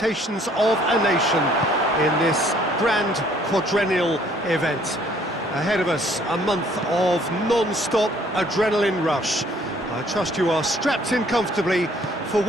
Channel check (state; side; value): normal; both; correlation 0.61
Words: of a nation in this grand quadrennial event. Ahead of us, a month of non-stop adrenaline rush. I trust you are strapped in comfortably for